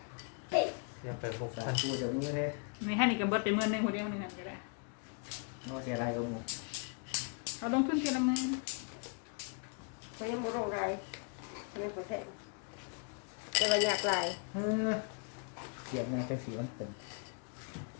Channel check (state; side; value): quieter; right; 39.2 dB